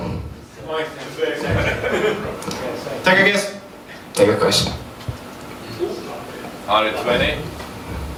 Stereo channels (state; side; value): identical; both; correlation 1.00